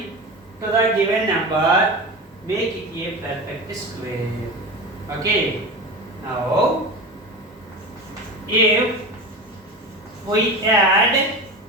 to the given number, make it a perfect square. Okay. Now if we add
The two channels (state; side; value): normal; both; correlation 0.28